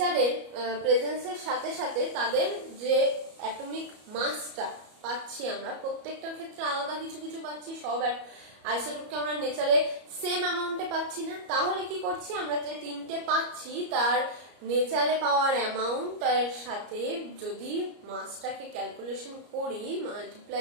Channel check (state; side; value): late; left; 34 ms